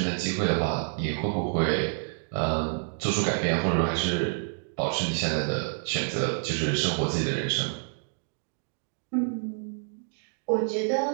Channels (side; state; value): left; silent; digital silence